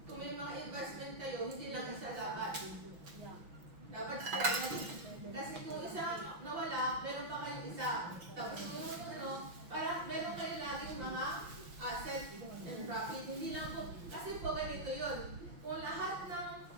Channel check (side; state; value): left; late; 5.9 ms